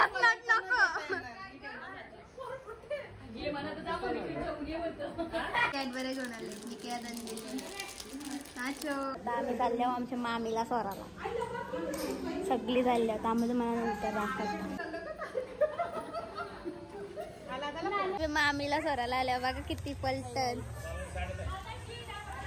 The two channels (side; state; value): both; identical; correlation 1.00